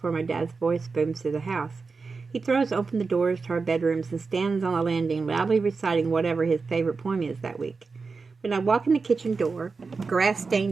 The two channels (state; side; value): quieter; left; 4.5 dB